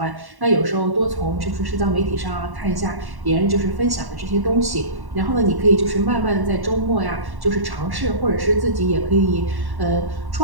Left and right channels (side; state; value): left; late; 1.1 ms